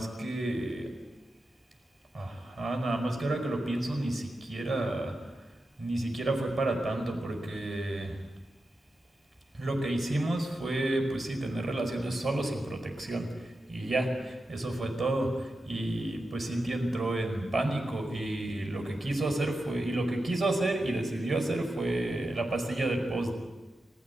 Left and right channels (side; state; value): both; normal; correlation 0.90